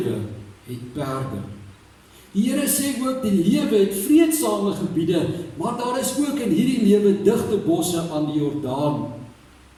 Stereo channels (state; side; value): identical; both; correlation 1.00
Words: het perde. Die Here sê ook, die lewe het vreedsame gebiede, maar daar is ook in hierdie lewe digte bosse aan die Jordaan.